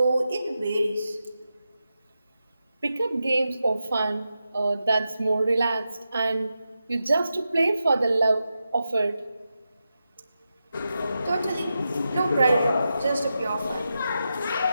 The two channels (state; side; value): inverted; both; correlation -0.89